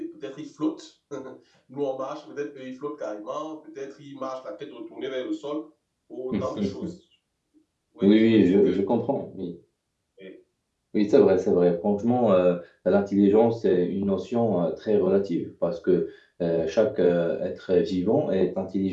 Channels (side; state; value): both; identical; correlation 1.00